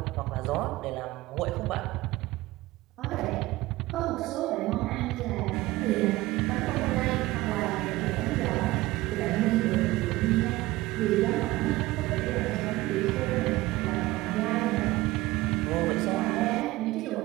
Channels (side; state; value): left; quieter; 18.6 dB